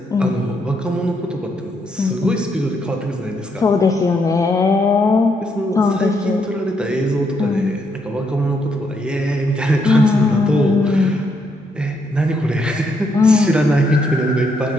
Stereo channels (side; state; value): both; normal; correlation 0.76